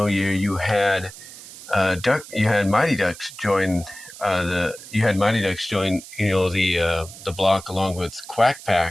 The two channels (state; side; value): noise; right; hiss, 16 dB below the sound